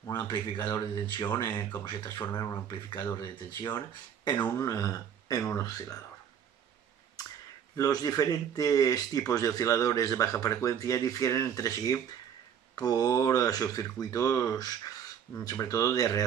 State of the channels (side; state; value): left; quieter; 8.6 dB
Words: un amplificador de tensión, cómo se transforma en un amplificador de tensión en un oscilador. Los diferentes tipos de osciladores de baja frecuencia difieren entre sí por sus circuitos, sobre todo de